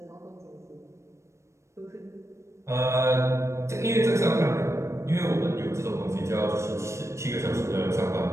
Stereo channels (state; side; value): late; left; 0.14 ms